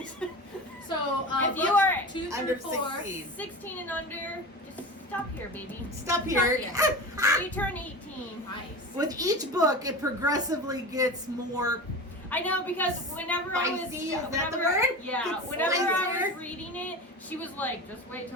So, If you books are 2 under through 4. 16. 16 and under, just stop here, baby. Stop here. You turn 18. Nice. With each book, it progressively gets more. I know, because whenever I was Spicy, is that the whenever- word? Yeah, It's whenever I spicier. was reading it, she was like, "Just wait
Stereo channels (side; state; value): both; normal; correlation 0.29